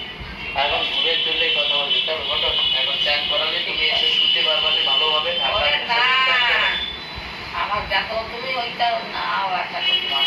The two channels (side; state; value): both; identical; correlation 1.00